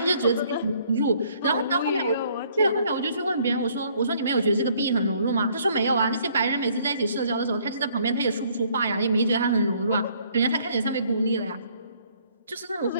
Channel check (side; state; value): both; inverted; correlation -0.63